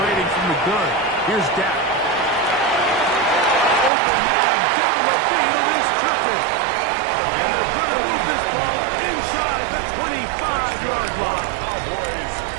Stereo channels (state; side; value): drops out; left; at 3.9 s